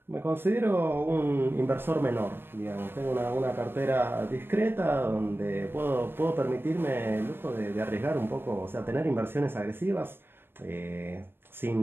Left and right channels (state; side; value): late; left; 0.10 ms